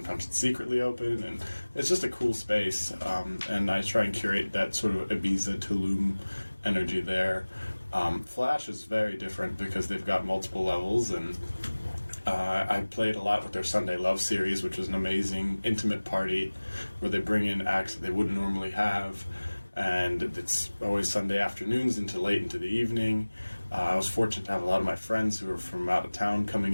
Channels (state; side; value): inverted; both; correlation -1.00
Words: it's secretly open, and it's just a cool space. And I try and curate that sort of Ibiza, Tulum energy there. Flash is very different because they've got multiple levels, and I played a lot with their Sunday Love series, which was an amazing intimate party where they bring in acts that they wouldn't normally have, and it's always Sunday afternoons into late into the evening. I was fortunate to have a lot of my friends who were from out of town coming